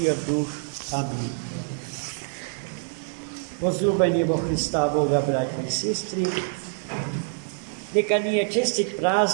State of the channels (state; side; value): silent; left; digital silence